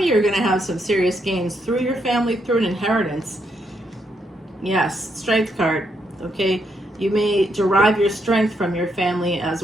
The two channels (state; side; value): normal; both; correlation 0.78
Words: you are going to have some serious gains through your family, through an inheritance. Yes, Strength card, okay? You may derive your strength from your family as